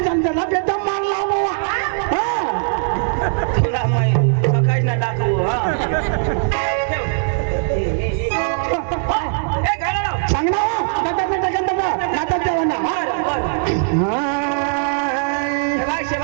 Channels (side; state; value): left; silent; 66 dB below the other